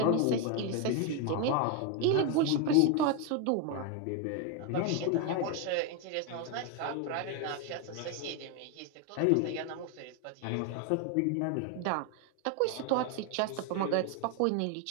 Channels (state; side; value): different; both; correlation 0.01